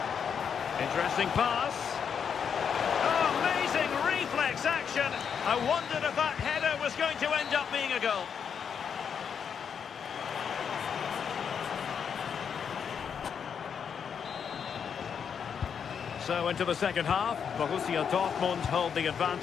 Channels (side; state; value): right; quieter; 7.2 dB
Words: Interesting pass. Oh, amazing reflex action. I wondered if that header was going to end up being a goal. So into the second half, Borussia Dortmund hold the